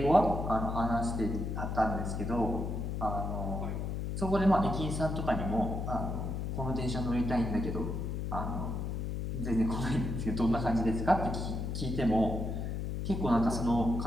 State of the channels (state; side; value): noise; left; hum, 3 dB below the sound